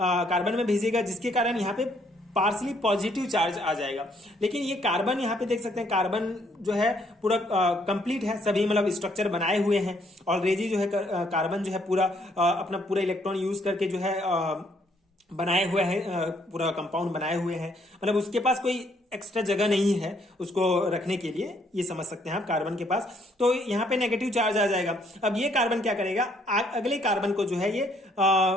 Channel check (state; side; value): normal; both; correlation 0.68